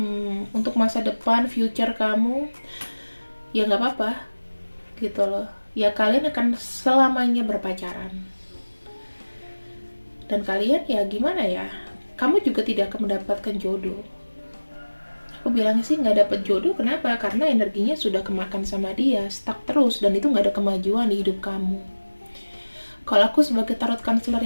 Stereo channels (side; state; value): both; inverted; correlation -1.00